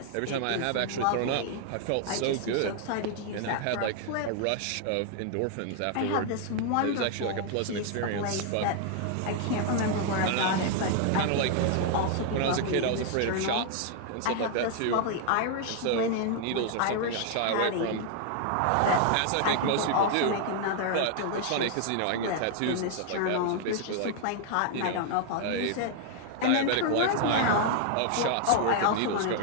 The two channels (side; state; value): both; different; correlation 0.00